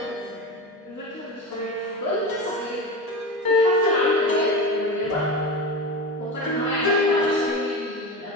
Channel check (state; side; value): normal; both; correlation 0.25